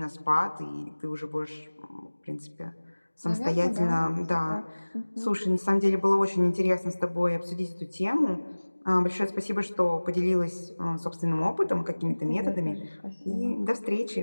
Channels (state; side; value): inverted; both; correlation -1.00